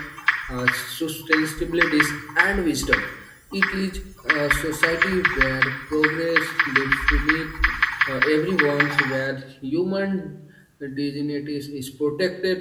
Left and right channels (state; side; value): identical; both; correlation 1.00